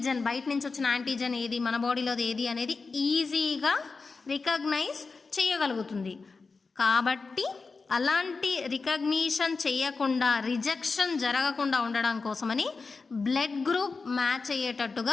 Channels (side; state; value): right; quieter; 4.3 dB